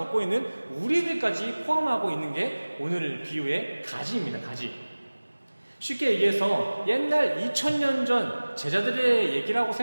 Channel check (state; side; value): inverted; both; correlation -1.00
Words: 있는 우리들까지 포함하고 있는 게 오늘 비유의 가지입니다. 가지. 쉽게 얘기해서 옛날 2000년 전 제자들의 얘기라고